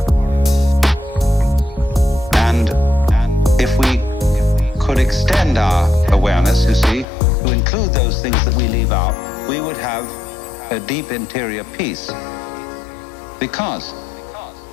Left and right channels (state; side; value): drops out; right; at 7.1 s